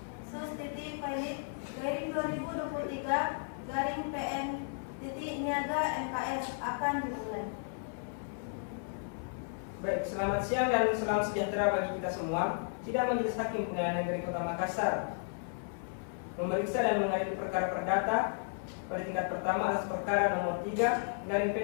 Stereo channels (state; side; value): silent; right; 55 dB below the other